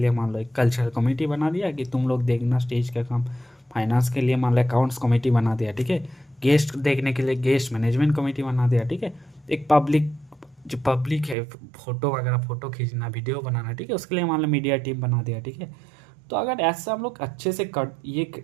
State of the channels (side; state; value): left; drops out; at 11.4 s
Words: मान लो एक कल्चरल कमेटी बना दिया कि तुम लोग देखना स्टेज का काम, फाइनेंस के लिए मान लो अकाउंट्स कमेटी बना दिया, ठीक है। गेस्ट देखने के लिए गेस्ट मैनेजमेंट कमेटी बना दिया, ठीक है। एक पब्लिक, जो पब्लिक है, फोटो वगैरह, फोटो खींचना, वीडियो बनाना, ठीक है, उसके लिए मान लो मीडिया टीम बना दिया, ठीक है। तो अगर ऐसा हम लोग अच्छे से ये